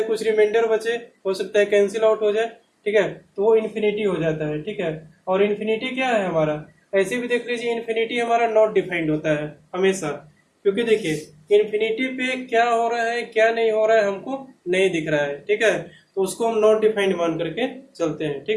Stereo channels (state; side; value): identical; both; correlation 1.00